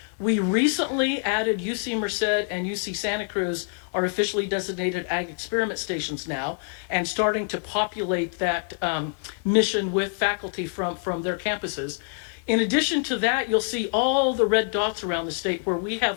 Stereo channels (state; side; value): silent; right; 61 dB below the other